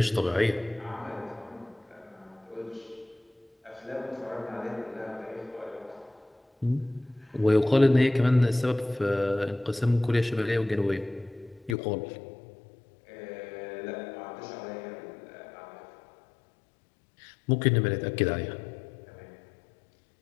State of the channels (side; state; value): right; drops out; at 11.8 s